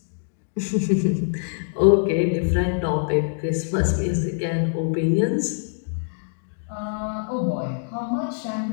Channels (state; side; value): silent; right; digital silence